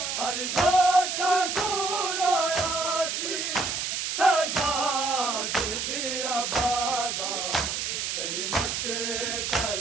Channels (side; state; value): right; noise; hiss, 2 dB below the sound